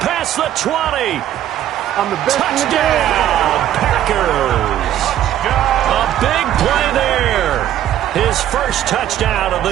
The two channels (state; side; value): quieter; left; 11.8 dB